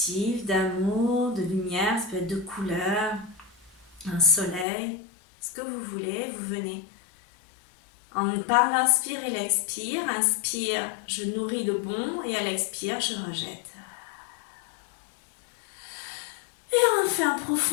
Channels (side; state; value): right; drops out; at 4.7 s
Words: d'amour, de lumière, ça peut être de couleurs, un soleil, ce que vous voulez, vous venez. Par l'inspire et l'expire, inspire, je nourris le bon et à l'expire, je rejette. Et on fait un